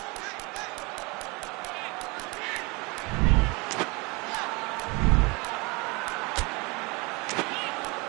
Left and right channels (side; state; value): left; quieter; 27.1 dB